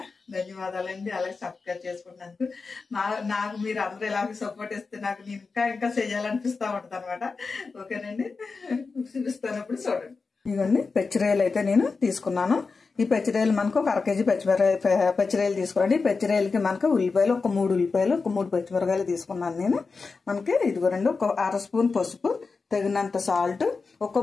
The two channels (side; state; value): right; quieter; 4.5 dB